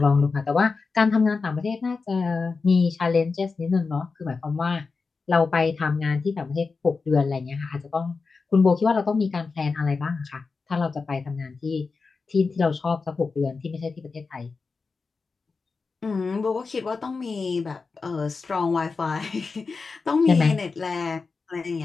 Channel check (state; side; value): quieter; right; 4.5 dB